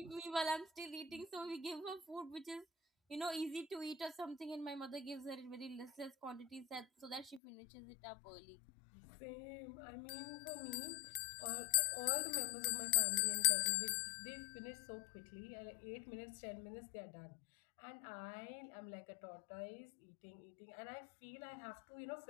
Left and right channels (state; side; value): drops out; right; at 7.4 s